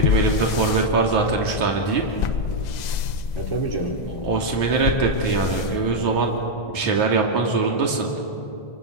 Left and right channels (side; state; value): right; late; 2.0 ms